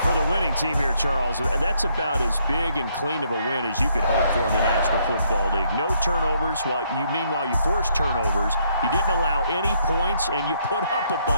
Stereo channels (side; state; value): both; inverted; correlation -0.71